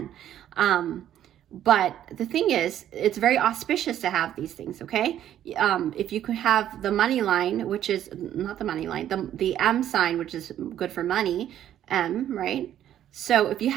But the thing is, it's very auspicious to have these things, okay? If you could have the money line, which is not the money line, the M sign, which is good for money, M, right? So if you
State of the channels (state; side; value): quieter; left; 11.2 dB